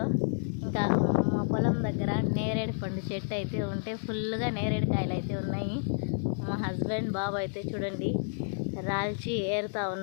ఇంకా మా పొలం దగ్గర నేరేడు పండు చెట్టు అయితే ఉంటే ఫుల్గా నేరేడు కాయలు అయితే ఉన్నాయి. మా హస్బెండ్ బాబు అయితే చూడండి రాల్చి ఏరుతా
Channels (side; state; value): right; silent; digital silence